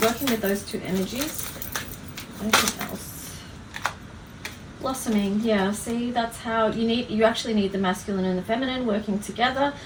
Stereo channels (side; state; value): both; identical; correlation 1.00